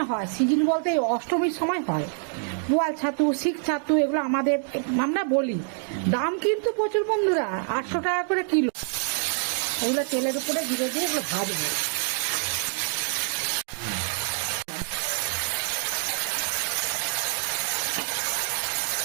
হয়, সিজন বলতে এই অষ্টমীর সময় হয়। পোয়াল ছাতু, শিক ছাতু, এগুলো আমাদের আমরা বলি। দাম কিন্তু প্রচুর বন্ধুরা, 800 টাকা করে কিলো। এগুলো তেলের উপরে ধীরে ধীরে এগুলো ভাজবো।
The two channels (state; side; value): silent; left; 61 dB below the other